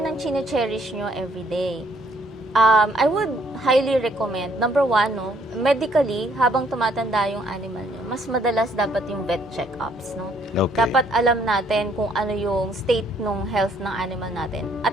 ang chine-cherish nyo every day. I would highly recommend, number one, no, medically, habang tumatanda yung animal nyo, mas madalas dapat yung vet check-ups, no? Okay. Dapat alam natin kung ano yung state ng health ng animal natin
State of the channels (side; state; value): both; normal; correlation 0.66